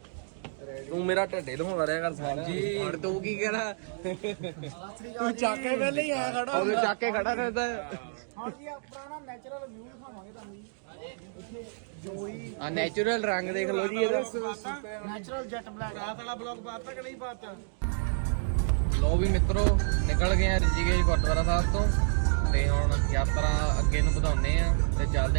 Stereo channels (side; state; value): left; silent; digital silence